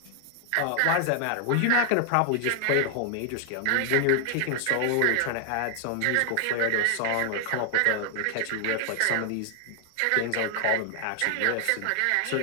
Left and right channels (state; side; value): different; both; correlation 0.00